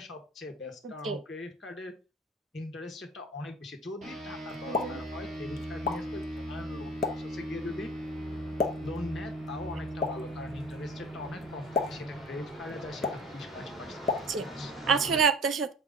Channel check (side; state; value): both; normal; correlation 0.43